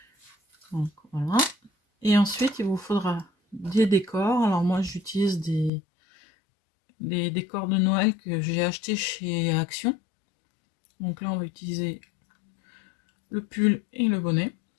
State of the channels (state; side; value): drops out; right; at 5.7 s